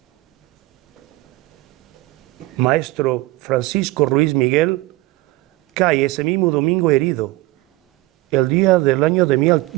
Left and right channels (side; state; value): left; quieter; 19.4 dB